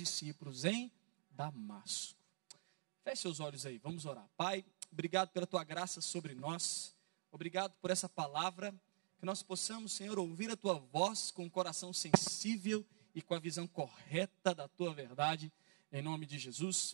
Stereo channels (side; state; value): left; silent; digital silence